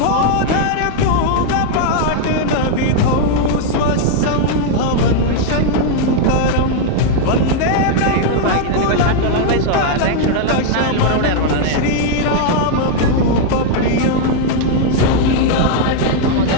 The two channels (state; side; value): different; both; correlation 0.00